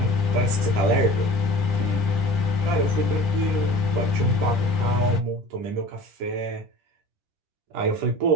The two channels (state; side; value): late; left; 10 ms